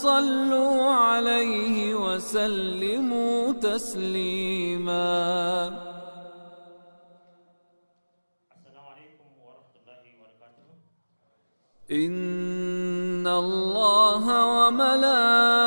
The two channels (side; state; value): both; inverted; correlation -1.00